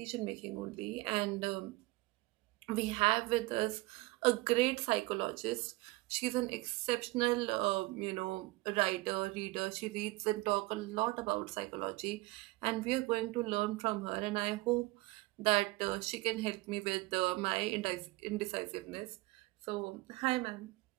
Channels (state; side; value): quieter; left; 21.6 dB